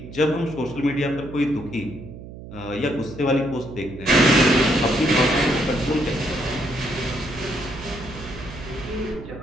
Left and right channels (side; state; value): right; noise; hum, 14 dB below the sound